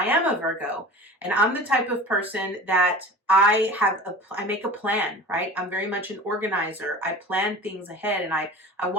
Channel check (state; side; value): normal; both; correlation 0.38